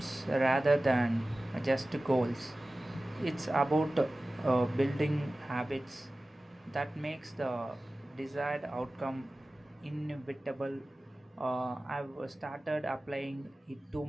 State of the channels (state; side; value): normal; both; correlation 0.97